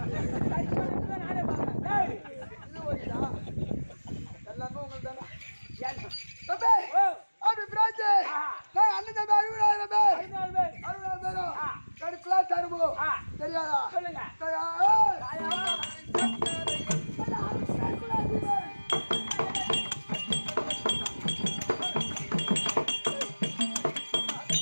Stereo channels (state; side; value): inverted; both; correlation -1.00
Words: நானே பாக்கிறேன். எல்லாமே உங்களுக்கு தானே ஏன்? தம்பி ஓ அப்படி பிராச்சு அண்ணன் தம்பி 60,000 பேர் 60,000 பேரும் கடுப்புலா தருமோ தெரியாதா சொல்லுங்க.